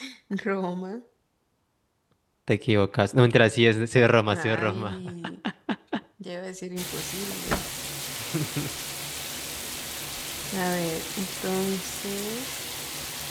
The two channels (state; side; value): identical; both; correlation 1.00